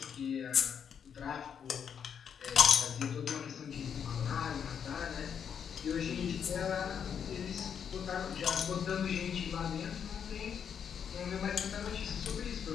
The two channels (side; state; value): right; quieter; 7.7 dB